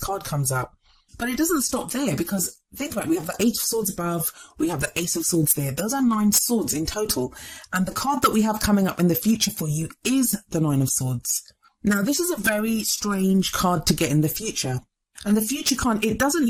comes up. But it doesn't stop there, because think about it, we have the Eight of Swords above, we have the Ace of Swords there. Those are 9 swords in total. And the card that we have coming up in the future for you is the Nine of Swords. Now, this is a very strange card to get in the future. And the future card, it doesn't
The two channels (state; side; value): identical; both; correlation 1.00